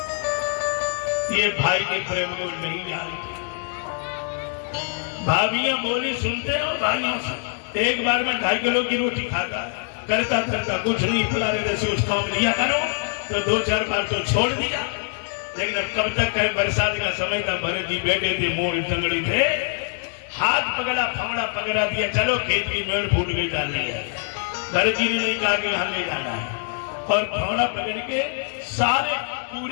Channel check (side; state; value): right; silent; 60 dB below the other